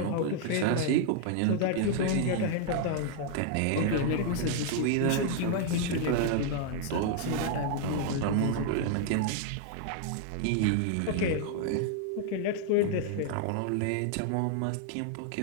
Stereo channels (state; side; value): different; both; correlation 0.00